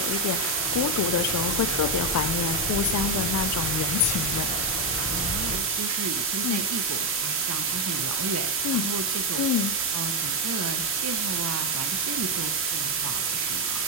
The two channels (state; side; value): normal; both; correlation 0.05